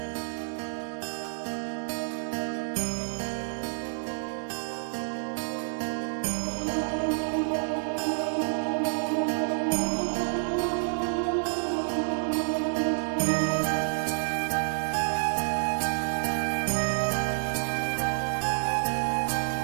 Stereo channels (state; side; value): silent; left; digital silence